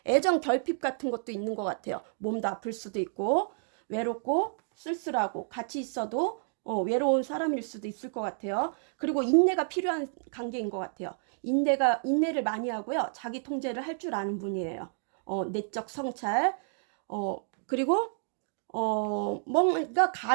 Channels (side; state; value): left; silent; digital silence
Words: 애정 결핍 같은 것도 있는 것 같아요. 몸도 아플 수도 있고 외롭고 쓸쓸하고 같이 있어도 외로운 사람일 수도 있을 것 같아요. 그리고 인내가 필요한 관계인 것 같아요. 인내를 많이 하고요. 자기 통제를 할 줄 아는 분이에요. 내적 성찰. 그리고 뭔가